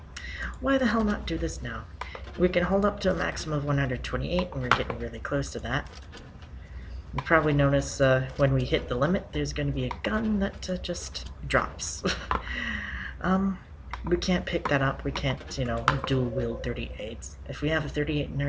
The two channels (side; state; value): both; identical; correlation 1.00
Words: why the hell not do this now? We can hold up to a maximum of 128, and we're getting really close to that. You probably notice when we hit the limit, there's going to be a gun that just drops. We can't pick that up. We can't, you know, dual wield 38s. If we have a 38 in